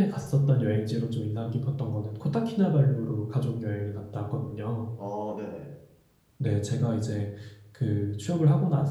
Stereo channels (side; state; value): both; identical; correlation 1.00